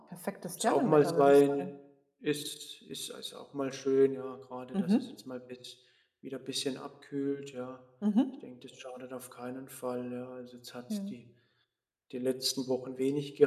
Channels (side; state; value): both; identical; correlation 1.00